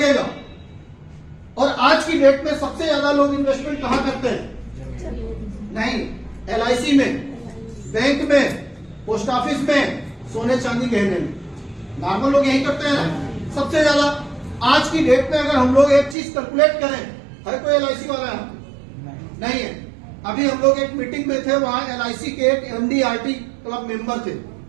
और आज की डेट में सबसे ज्यादा लोग इन्वेस्टमेंट कहां करते हैं? नहीं, LIC में, बैंक में, पोस्ट ऑफिस में, सोने चांदी गहने में। नॉर्मल लोग यही करते हैं ना सबसे ज्यादा। आज की डेट में अगर हम लोग एक चीज कैलकुलेट करें, है कोई LIC वाला है? नहीं है। अभी हम लोग एक मीटिंग में थे, वहां LIC के एक MD/RT क्लब मेंबर थे,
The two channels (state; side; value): drops out; left; at 16.2 s